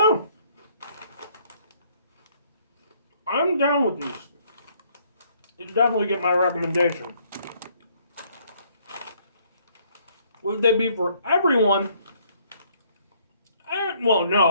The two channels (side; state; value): both; inverted; correlation -0.65